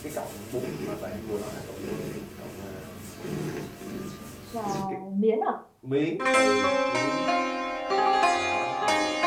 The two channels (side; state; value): both; identical; correlation 1.00